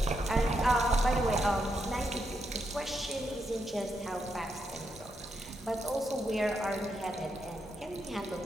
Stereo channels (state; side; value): normal; both; correlation 0.81